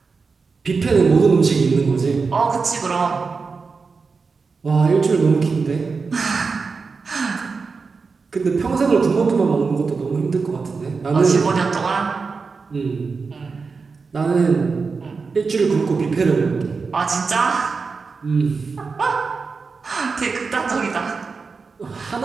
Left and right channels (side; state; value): left; quieter; 4.7 dB